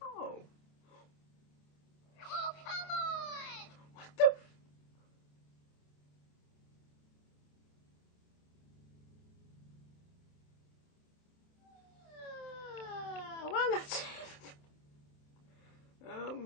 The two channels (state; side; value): late; right; 27 ms